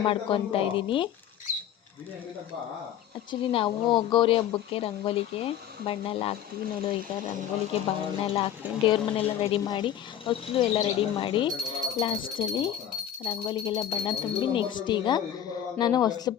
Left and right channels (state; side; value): quieter; right; 10.4 dB